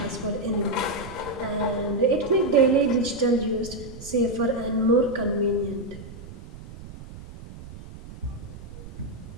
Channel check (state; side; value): noise; right; rumble, 15 dB below the sound